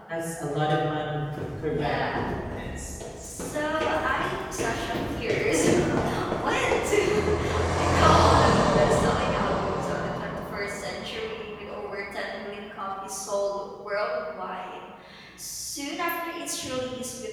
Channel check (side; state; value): both; identical; correlation 1.00